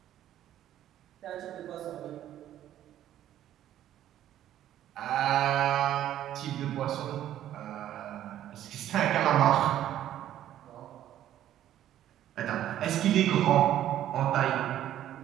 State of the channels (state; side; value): quieter; left; 12.0 dB